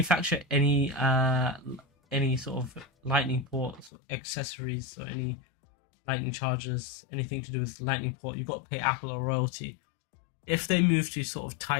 any sort of Lightning ports or accessories or any Lightning chargers, anything to do with Lightning port, you've got to pay Apple a royalty. If they move to sort of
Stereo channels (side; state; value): right; drops out; at 3.9 s